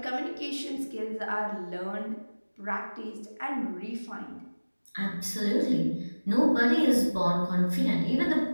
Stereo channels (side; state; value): both; inverted; correlation -1.00